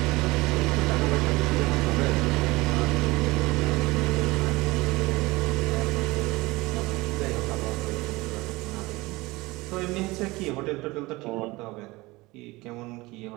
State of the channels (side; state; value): left; quieter; 21.5 dB